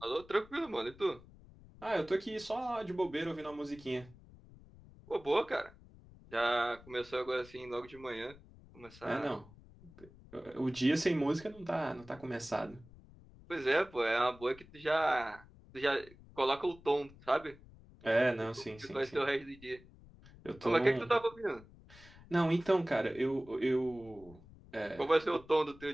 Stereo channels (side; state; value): left; noise; rumble, 22 dB below the sound